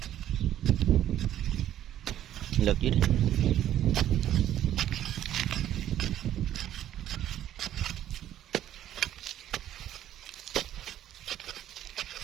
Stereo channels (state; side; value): quieter; left; 11.7 dB